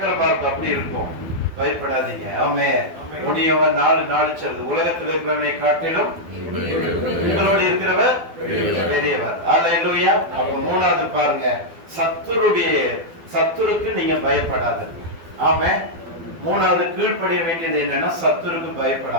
இருக்கும், அப்படி இருக்கும். பயப்படாதீங்க. ஆமென். முடியவன் 4 சொல்றது, உலகத்தில் இருக்கிறவனை காட்டிலும் உங்களோடு இருக்கிறவர் பெரியவர். ஹல்லேலூயா. அப்ப மூணாவது பாருங்க, சத்துருக்கு நீங்க பயப்படாதீங்க. ஆமென். மூணாவது கீழ்ப்படிய வேண்டியது என்னன்னா, சத்துருக்கு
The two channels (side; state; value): left; late; 12 ms